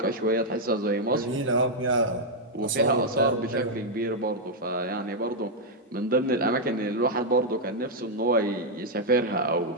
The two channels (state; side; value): normal; both; correlation -0.02